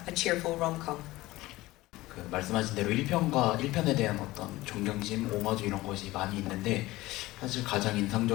cheerful rom-com. 그 말씀하신 대로 1편과 1편에 대한 어떤 존경심, 오마주 이런 것이 많이 있는데 사실 가장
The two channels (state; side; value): quieter; right; 18.4 dB